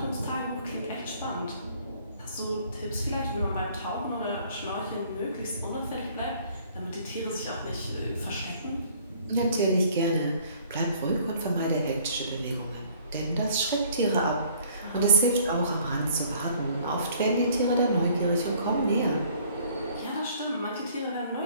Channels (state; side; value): inverted; both; correlation -0.57